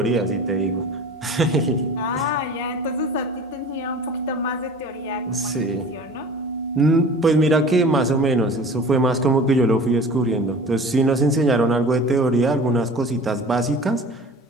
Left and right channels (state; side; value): normal; both; correlation 0.41